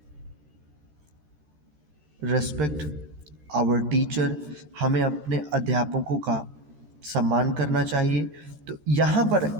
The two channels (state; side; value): late; left; 13 ms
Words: our teacher, हमें अपने अध्यापकों का सम्मान करना चाहिए। तो यहाँ